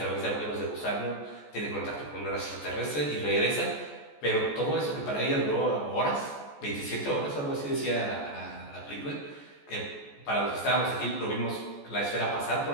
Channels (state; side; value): late; right; 14 ms